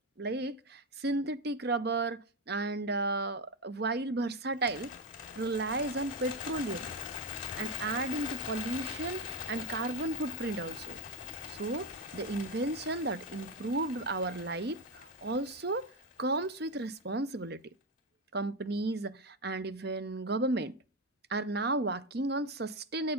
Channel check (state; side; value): normal; both; correlation 0.12